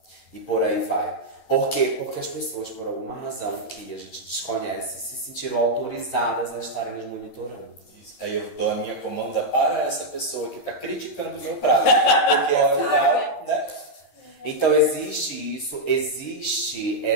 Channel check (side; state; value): right; late; 13 ms